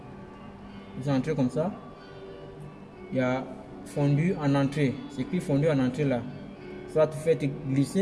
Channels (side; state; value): both; identical; correlation 1.00